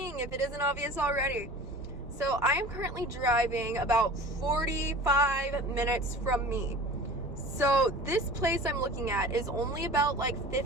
if it isn't obvious already. So, I am currently driving about 45 minutes from me. So, this place I'm looking at is only about like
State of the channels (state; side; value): normal; both; correlation 0.39